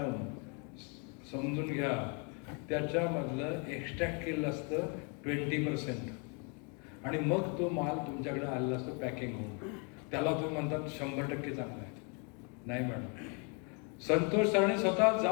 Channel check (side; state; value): right; quieter; 35.4 dB